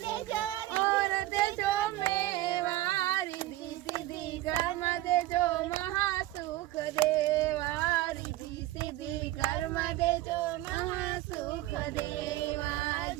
देजो और देजो मेवा रिद्धि सिद्धि कर्म देजो महासुख देवा रिद्धि सिद्धि कर्म देजो महासुख देवा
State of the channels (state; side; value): quieter; left; 16.1 dB